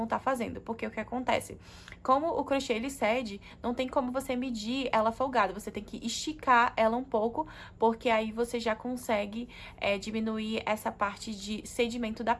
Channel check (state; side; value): identical; both; correlation 1.00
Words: estar fazendo. Porque o que acontece? Como o crochê ele cede, não tem como você medir ela folgada, você tem que esticar ela um pouco, porque aí você já consegue diminuir essa parte de cedimento da